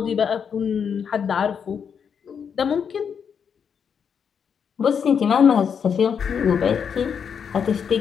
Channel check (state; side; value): quieter; right; 7.1 dB